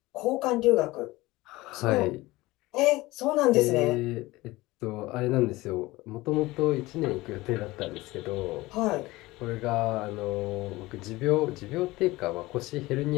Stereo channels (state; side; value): quieter; right; 19.9 dB